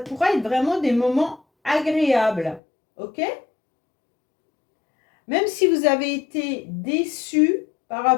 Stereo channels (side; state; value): right; drops out; at 2.6 s